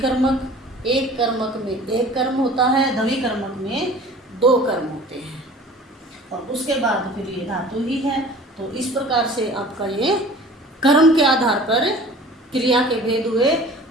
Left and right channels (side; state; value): both; normal; correlation 0.45